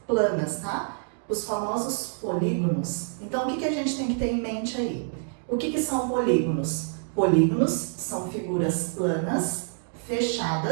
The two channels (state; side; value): silent; left; digital silence